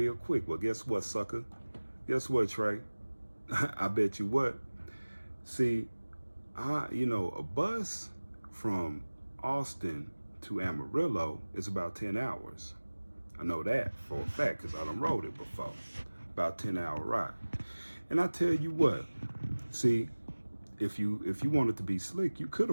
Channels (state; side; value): inverted; both; correlation -1.00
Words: quick. Well, guess what, sucker? Guess what, Trey? I bet you what. See, a bus from Austin to Amarillo is about 10 hours. I know that for a fact because I done rode it before. About 10-hour ride. And I tell you what, see, if you wanted to be slick, you could